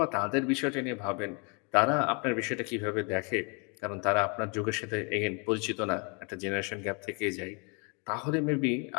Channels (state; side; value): quieter; right; 33.8 dB